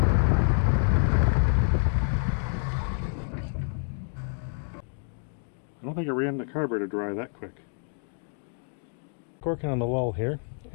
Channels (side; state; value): right; silent; digital silence